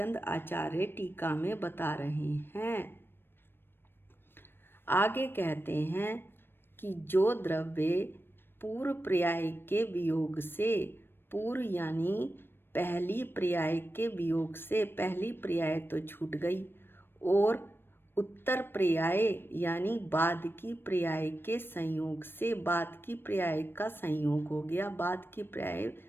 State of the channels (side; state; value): right; late; 0.10 ms